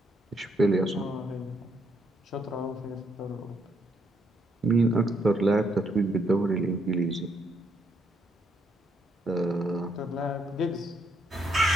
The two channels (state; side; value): normal; both; correlation 0.74